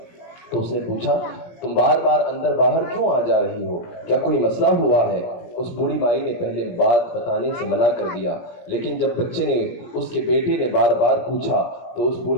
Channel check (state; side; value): late; right; 17 ms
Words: تو اس نے پوچھا تم بار بار اندر باہر کیوں آ جا رہی ہو، کیا کوئی مسئلہ ہوا ہے؟ اس بوڑھی مائی نے پہلے بات بتانے سے منع کر دیا، لیکن جب بچے نے اس کے بیٹے نے بار بار پوچھا تو اس